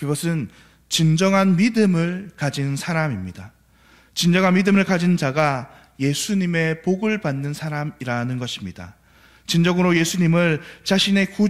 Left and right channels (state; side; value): identical; both; correlation 1.00